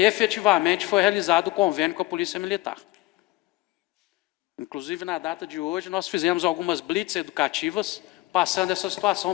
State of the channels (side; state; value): right; quieter; 19.2 dB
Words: efetivamente foi realizado o convênio com a Polícia Militar. Inclusive, na data de hoje, nós fizemos algumas blitz educativas, passando essa